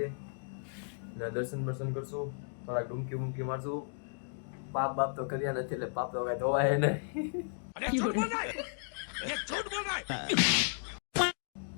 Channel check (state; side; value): silent; right; digital silence